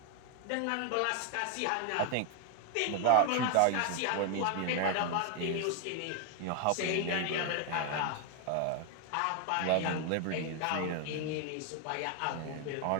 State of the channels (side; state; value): both; different; correlation 0.01